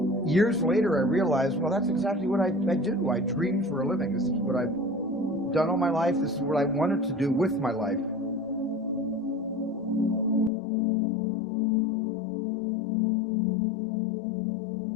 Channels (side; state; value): right; drops out; at 10.5 s